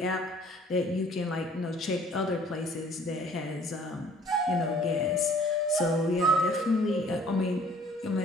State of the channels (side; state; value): both; normal; correlation 0.55